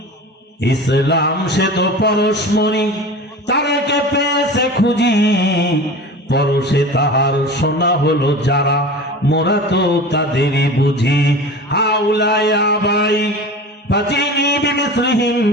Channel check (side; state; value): both; normal; correlation 0.34